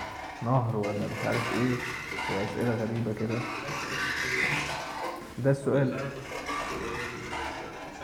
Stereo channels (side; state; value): both; identical; correlation 1.00